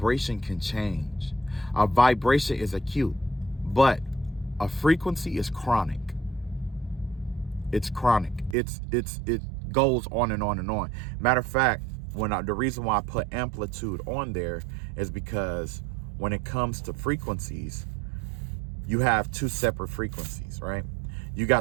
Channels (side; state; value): left; drops out; at 8.6 s